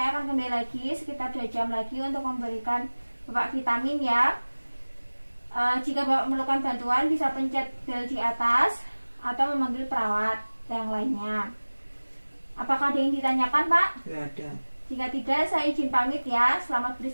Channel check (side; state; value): both; inverted; correlation -1.00